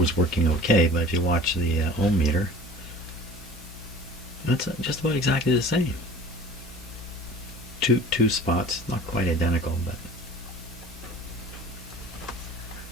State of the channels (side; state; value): both; normal; correlation 0.43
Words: working okay, but if you watch the ohm meter, that's just about exactly the same. Two spots, not quite identical, but